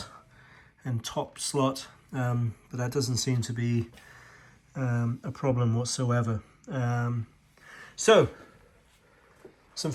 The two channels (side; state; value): both; identical; correlation 1.00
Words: and top slot, but that doesn't seem to be a problem whatsoever. So some